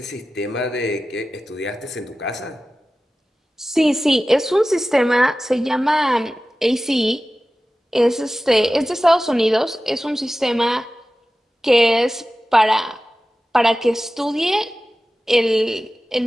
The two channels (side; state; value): both; normal; correlation 0.95